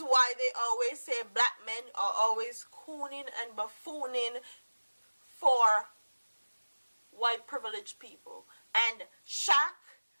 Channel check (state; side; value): inverted; both; correlation -1.00